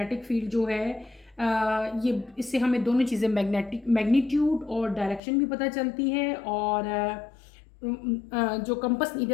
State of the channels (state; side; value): drops out; right; at 5.2 s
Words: फील्ड जो है ये, इससे हमें दोनों चीज़ें, मैग्नीट्यूड और डायरेक्शन भी पता चलती है, और जो कंपास